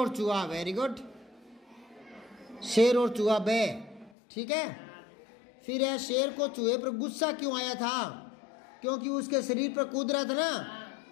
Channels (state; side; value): drops out; right; at 4.1 s